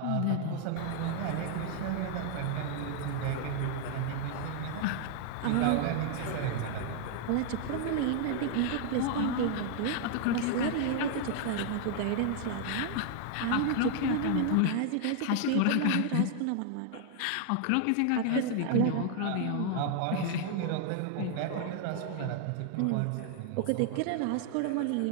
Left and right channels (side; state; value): both; different; correlation 0.00